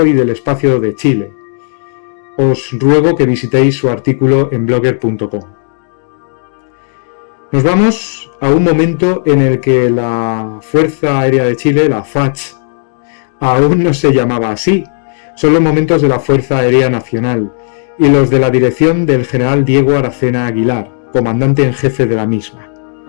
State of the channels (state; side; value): silent; right; digital silence